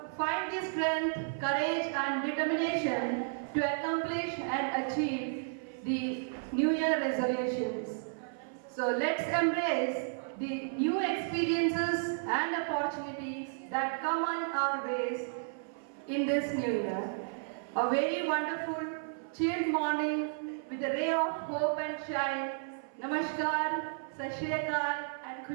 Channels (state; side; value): silent; left; 56 dB below the other